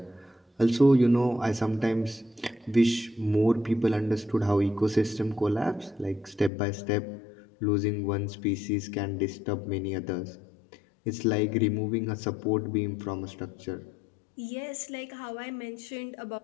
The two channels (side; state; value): right; drops out; at 6.5 s